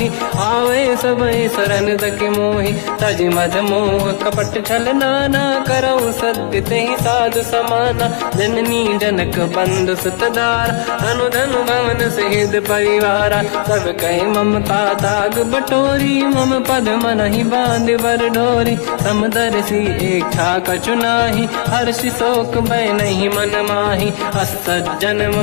आवे सबई शरण तक मोहि तज मद मोह कपट छल नाना करऊँ सत्य तेहि साधु समाना जननी जनक बंधु सुतदार अनुधन भवन सहित परिवारा सब कहे ममता ताग बटोरी मम पद मन ही बांध बर डोरी समदर्शी इच्छा कछु नाही हर्षि शोक मैं नहीं मन माही असज्जन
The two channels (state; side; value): silent; right; digital silence